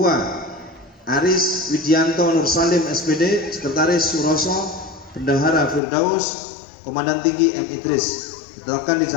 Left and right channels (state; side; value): drops out; right; at 5.8 s